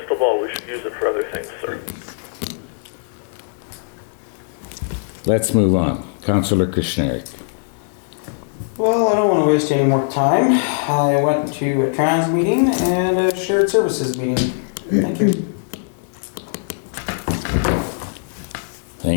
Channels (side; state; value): right; silent; 65 dB below the other